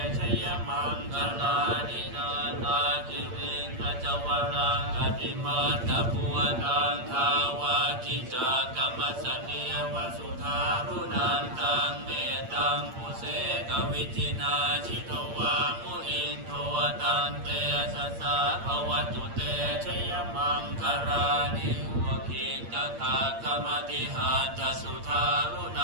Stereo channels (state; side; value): late; left; 8.7 ms